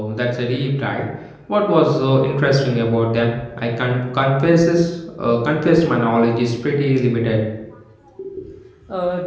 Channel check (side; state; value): both; identical; correlation 1.00